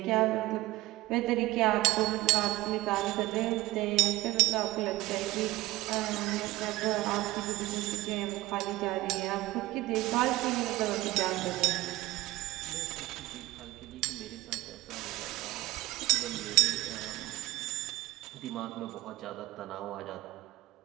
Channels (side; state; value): left; quieter; 18.2 dB